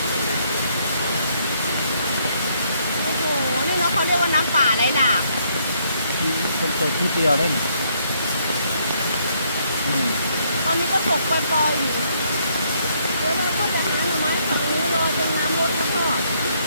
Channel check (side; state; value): both; inverted; correlation -0.70